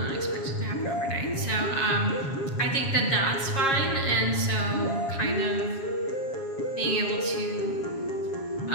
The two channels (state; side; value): late; right; 7.4 ms